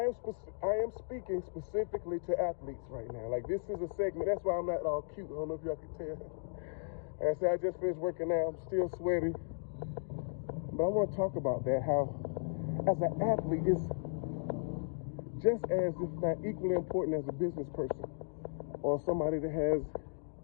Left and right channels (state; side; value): silent; right; digital silence